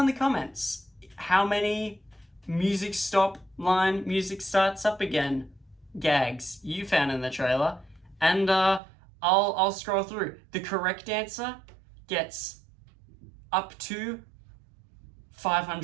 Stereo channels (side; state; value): left; drops out; at 8.8 s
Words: in the comments how many music stop line, music starts up again gags you found in the trailer, and I'll scroll through. The correct answer gets up to